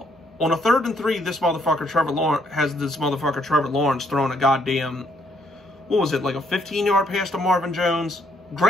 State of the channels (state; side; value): normal; both; correlation 0.71